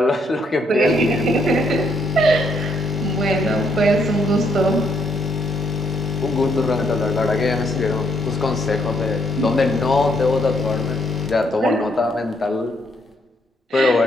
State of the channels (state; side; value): normal; both; correlation 0.72